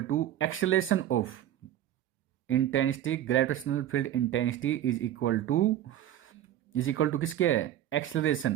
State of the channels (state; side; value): quieter; left; 11.9 dB